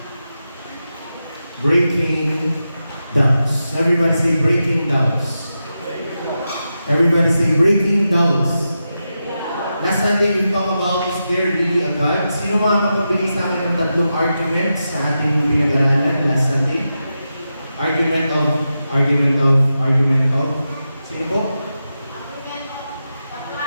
Breaking Doubts. Everybody say breaking doubts. Everybody say breaking doubts. Last Sunday, we talk about is there really a God? Sino mga makapagbigay sa akin ng tatlong arguments sa ating pinag-aralan last Sunday? Argument of. Sino po?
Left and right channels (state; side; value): inverted; both; correlation -0.89